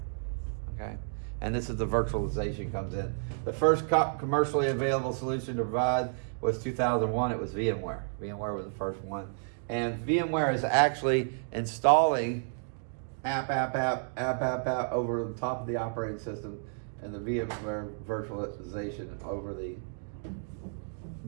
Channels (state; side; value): silent; left; digital silence